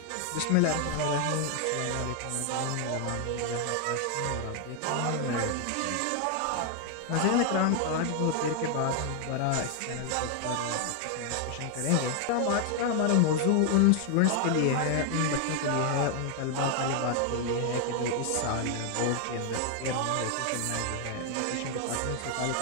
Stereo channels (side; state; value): both; different; correlation 0.00